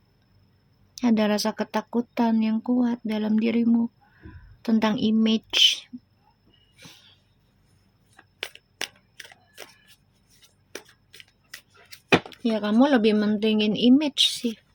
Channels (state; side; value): identical; both; correlation 1.00